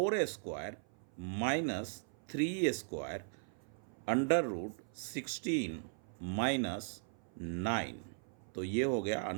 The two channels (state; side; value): silent; left; 52 dB below the other